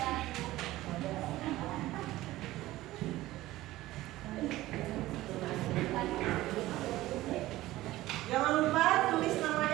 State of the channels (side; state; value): left; quieter; 16.7 dB